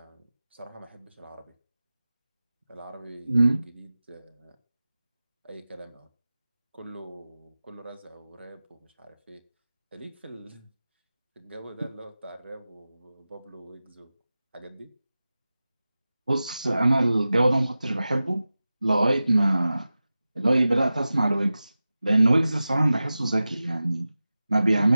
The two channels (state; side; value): inverted; both; correlation -0.95